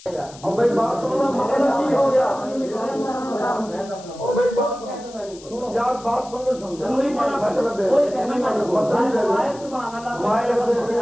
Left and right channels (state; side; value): noise; left; hiss, 20 dB below the sound